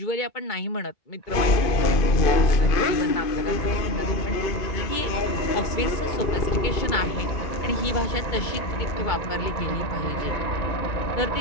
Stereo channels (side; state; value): right; late; 2.5 ms